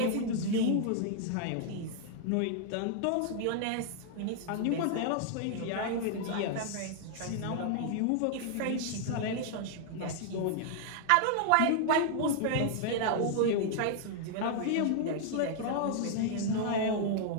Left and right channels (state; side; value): different; both; correlation 0.00